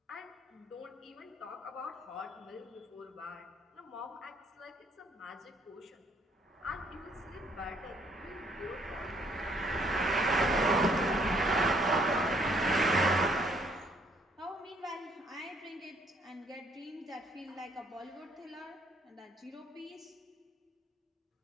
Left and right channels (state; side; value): normal; both; correlation 0.66